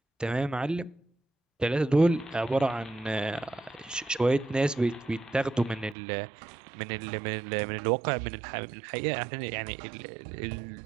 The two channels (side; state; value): left; drops out; at 6.0 s